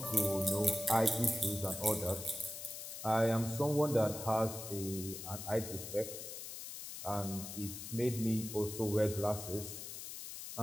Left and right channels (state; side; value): noise; left; hiss, 9 dB below the sound